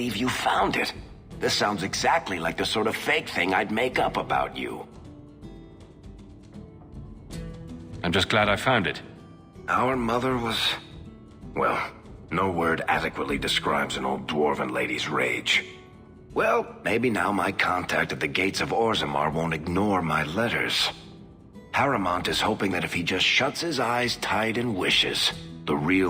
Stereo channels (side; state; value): both; identical; correlation 1.00